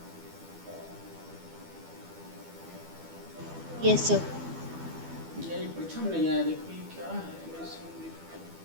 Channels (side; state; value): left; late; 12 ms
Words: Yes sir. ये प्रथम नहीं आया, देखो ये क्या है, मैं समझ।